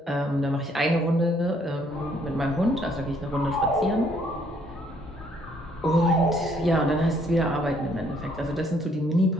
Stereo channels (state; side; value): normal; both; correlation 0.66